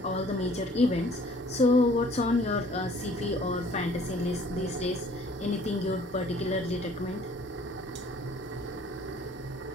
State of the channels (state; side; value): normal; both; correlation 0.55